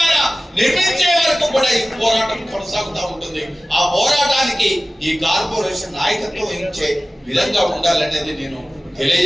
నిర్మించే వరకు కూడా ఈ పోరాటం కొనసాగుతూ ఉంటుంది. ఆ పోరాటానికి ఈ కార్పొరేషన్ నాయకత్వం వహించే విధంగా ఉండాలనేది నేను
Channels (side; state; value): both; normal; correlation 0.97